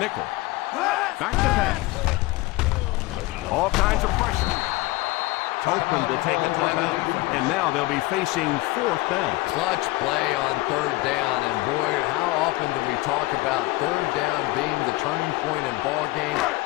Back to pass. All kinds of pressure. Oakland will take a timeout, and now they'll be facing 4th down. Clutch play on 3rd down, and boy, how often do we talk about 3rd down being the turning point in ball games?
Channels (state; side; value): quieter; right; 20.6 dB